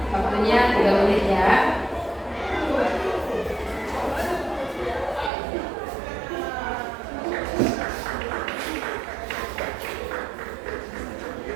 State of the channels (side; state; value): left; drops out; at 5.3 s